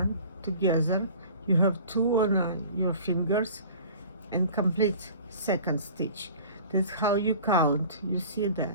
together. You have 2 on your fingers, and complete second stitch. That's how you count. You see that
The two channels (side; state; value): both; inverted; correlation -0.45